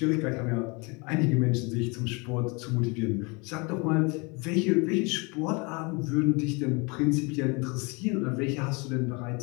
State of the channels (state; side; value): quieter; right; 29.4 dB